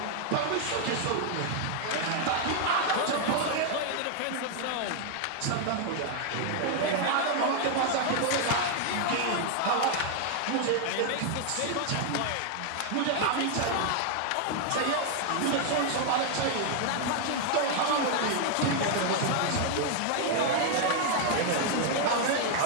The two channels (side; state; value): both; different; correlation 0.00